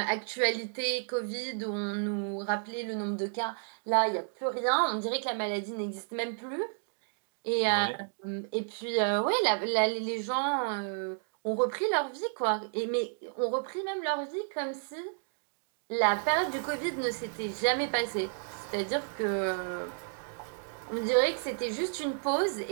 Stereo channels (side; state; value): left; silent; digital silence